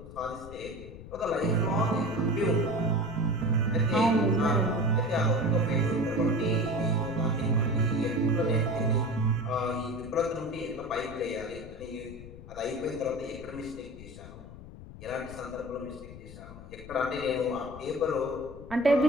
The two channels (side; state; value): left; noise; rumble, 15 dB below the sound